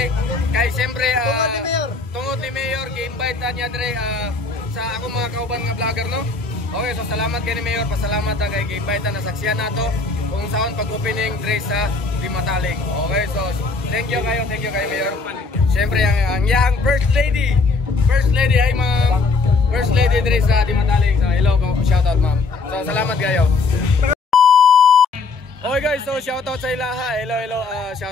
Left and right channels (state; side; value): quieter; right; 4.0 dB